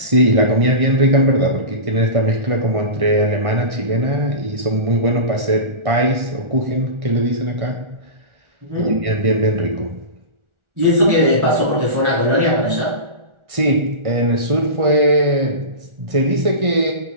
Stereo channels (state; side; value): late; left; 1.4 ms